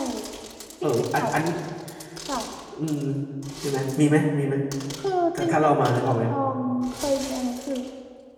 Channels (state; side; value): identical; both; correlation 1.00